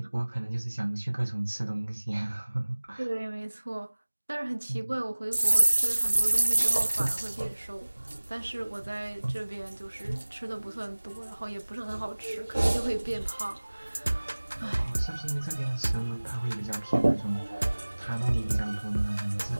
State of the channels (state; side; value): inverted; both; correlation -1.00